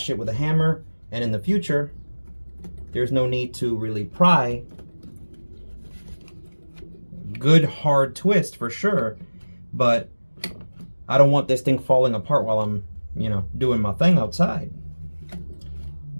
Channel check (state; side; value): inverted; both; correlation -1.00